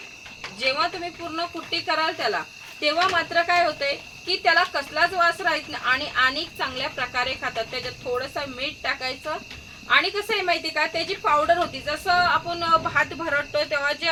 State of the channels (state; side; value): identical; both; correlation 1.00